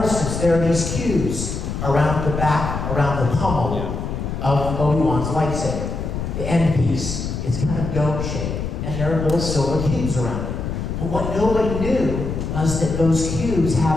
there are these cues around the back, around the pommel of Obi-Wan's lightsaber. The end piece is kind of dome-shaped, and there are little silver cubes around it. But what nobody knew was that those cubes have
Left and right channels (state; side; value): noise; left; rumble, 4 dB below the sound